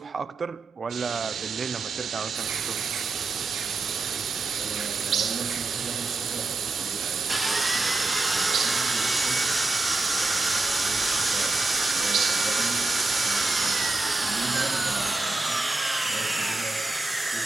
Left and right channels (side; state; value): left; quieter; 3.3 dB